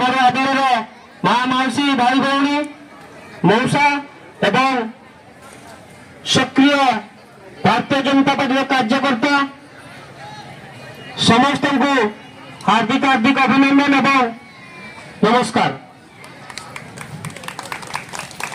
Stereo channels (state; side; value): identical; both; correlation 1.00